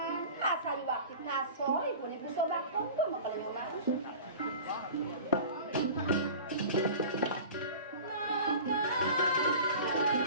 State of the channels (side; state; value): both; inverted; correlation -0.37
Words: asal waktu kasor ibu nih bisa bakon tuh mau kalau nyoman.